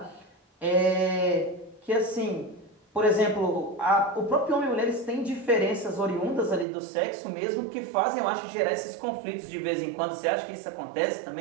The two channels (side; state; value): left; drops out; at 6.7 s